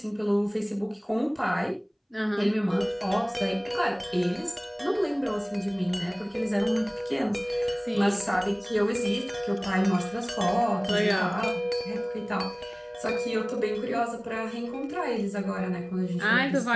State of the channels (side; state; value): both; identical; correlation 1.00